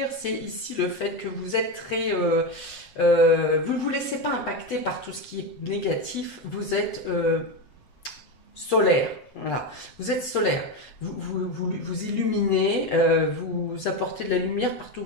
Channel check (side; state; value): right; late; 8.1 ms